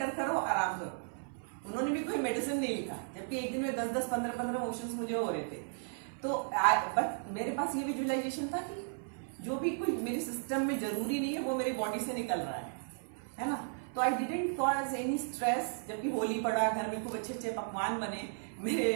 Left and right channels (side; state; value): left; silent; 54 dB below the other